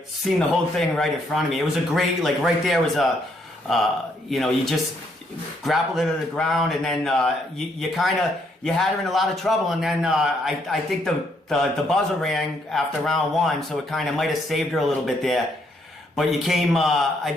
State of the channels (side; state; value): both; normal; correlation 0.72